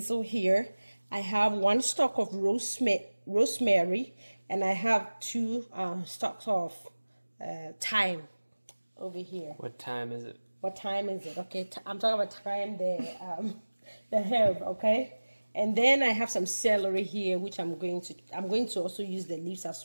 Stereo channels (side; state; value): both; inverted; correlation -1.00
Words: here. I have 1 stalk of rosemary, and I have 2 stalks of thyme over here. What time is it? What time is it? Okay, I'm talking about thyme, the herb, okay? And then I have some celery here, which I'm going to also use the leaves